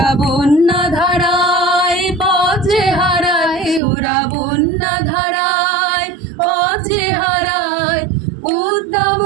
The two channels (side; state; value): left; drops out; at 3.8 s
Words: বন্যা ধারায় পথে হারায়, ওরা বন্যা ধারায় পথে হারায় উদ্দাম